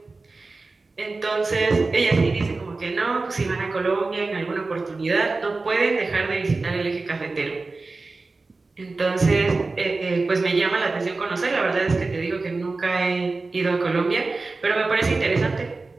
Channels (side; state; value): left; quieter; 3.6 dB